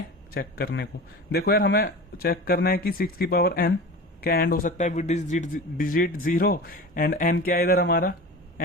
चेक करने को देखो यार, हमें चेक करना है कि 6 की पावर n क्या एंड हो सकता है विद डिजिट 0 एंड n क्या है इधर हमारा,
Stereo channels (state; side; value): normal; both; correlation 0.33